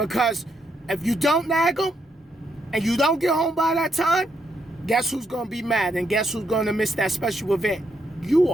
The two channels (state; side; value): normal; both; correlation 0.77